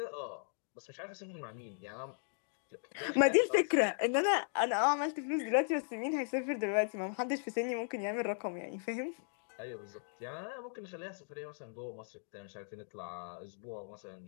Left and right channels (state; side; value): silent; right; digital silence